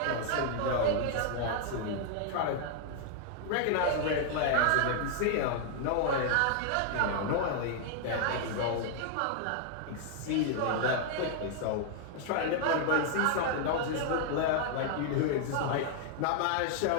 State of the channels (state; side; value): different; both; correlation 0.00